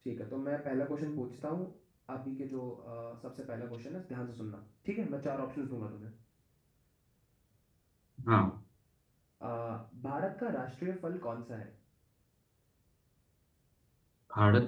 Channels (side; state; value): both; identical; correlation 1.00